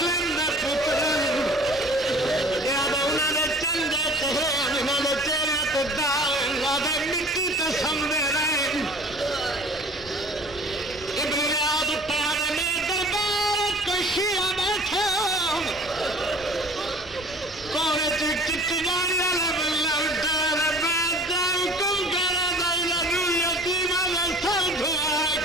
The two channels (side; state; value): both; normal; correlation 0.47